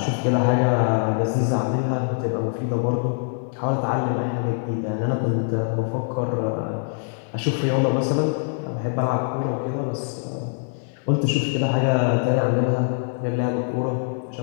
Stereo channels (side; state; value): right; silent; 63 dB below the other